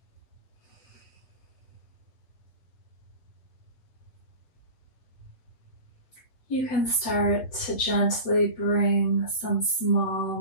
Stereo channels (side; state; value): right; late; 7.5 ms